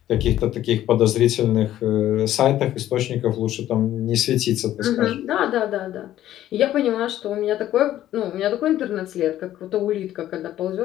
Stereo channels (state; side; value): quieter; right; 12.8 dB